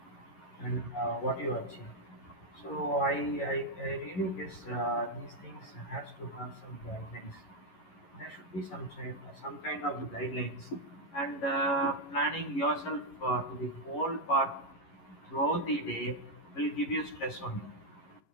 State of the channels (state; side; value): late; right; 11 ms